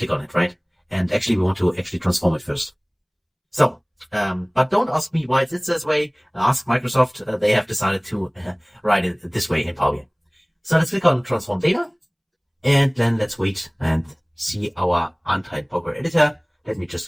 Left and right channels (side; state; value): both; identical; correlation 1.00